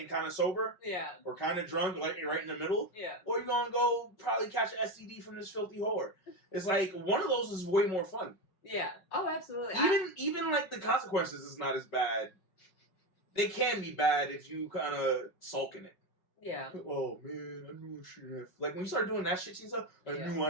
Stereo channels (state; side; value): late; right; 5.4 ms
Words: kind of sober? Yeah. Or kind of drunk, like right in the middle? Yeah. Or you going to go probably catch an STD from this filthy whore? It's like, one of those is way more fun. Yeah. Oh, absolutely. Even like the consequences is not as bad. They can be bad if you kind of sulk in it. Yeah. Oh man, I knew I shouldn't have. Like when you start doing that shit to yourself, I knew